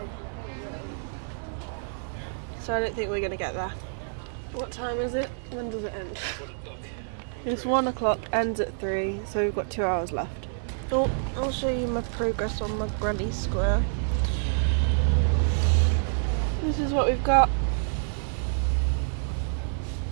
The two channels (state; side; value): silent; left; 60 dB below the other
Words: so I don't think we're going to get there. What time is it? When does it end? It's 1 o'clock, ends at 3, so we've got 2 hours left. Oh, I'll show you my progress on my granny square. This is what we've got.